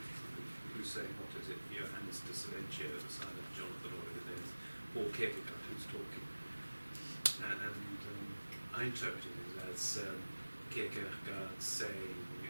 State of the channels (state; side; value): inverted; both; correlation -1.00